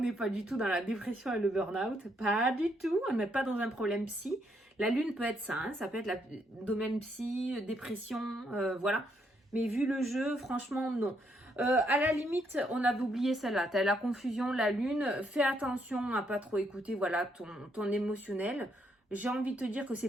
pas du tout dans la dépression et le burn-out, pas du tout, on n'est pas dans un problème psy. La lune peut être ça, hein, ça peut être le domaine psy, dépression, voilà. Mais vu le jeu, franchement, non. À la limite, on avait oublié celle-là. Tu as la confusion, la lune. Fais attention à pas trop écouter voilà, ton émotionnel. J'ai envie de te dire que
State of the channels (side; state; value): both; normal; correlation 0.74